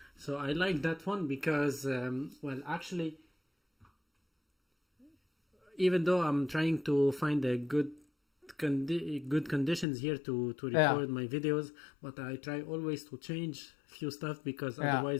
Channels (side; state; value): right; drops out; at 9.9 s